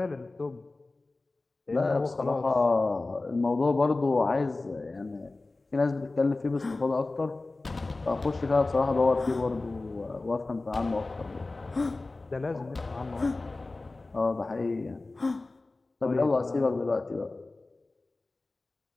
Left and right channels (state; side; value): quieter; right; 3.3 dB